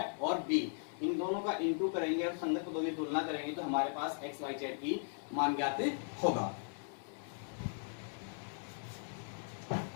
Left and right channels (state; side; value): silent; right; digital silence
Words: और B, इन दोनों का इंटू करेंगे और संगत पदों की तुलना करेंगे तो हमारे पास x y z की मान ज्ञात होगा।